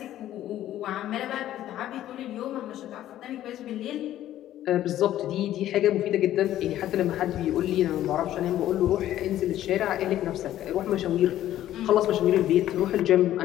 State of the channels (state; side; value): quieter; right; 12.8 dB